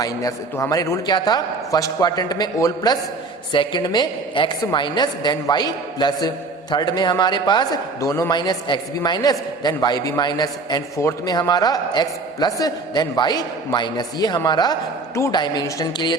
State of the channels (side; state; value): left; quieter; 3.7 dB